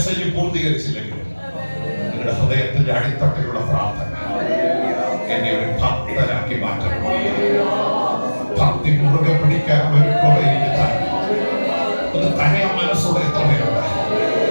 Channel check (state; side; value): inverted; both; correlation -1.00